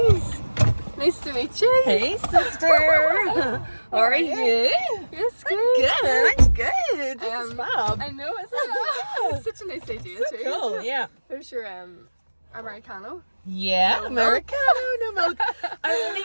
Nice to meet you. Hey, sister. How are you? Yes, good. Good. I'm good. This is fab. I know, isn't it? It's such a nice idea So too. cool. Isn't it? Yeah. There's your Americano. Yeah. No Americano, no milk. I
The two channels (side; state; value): both; inverted; correlation -1.00